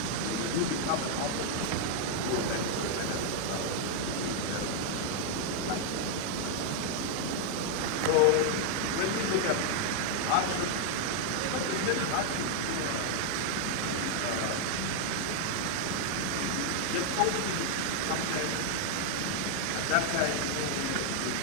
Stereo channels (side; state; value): both; different; correlation 0.00